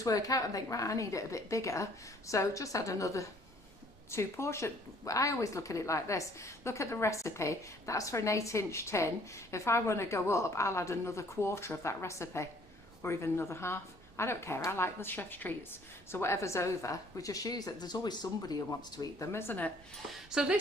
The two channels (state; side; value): normal; both; correlation 0.58